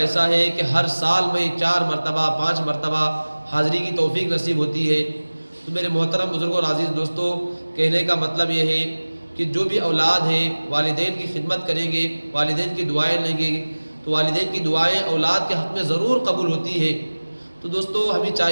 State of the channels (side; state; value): both; inverted; correlation -1.00